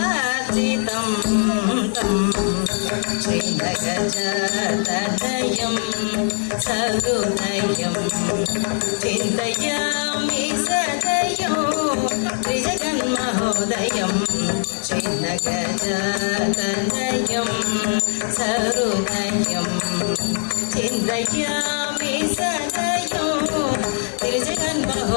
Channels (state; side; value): silent; right; digital silence